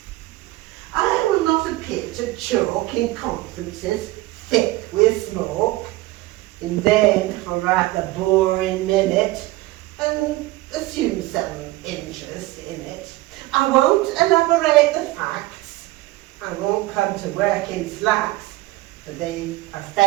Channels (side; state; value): left; quieter; 19.0 dB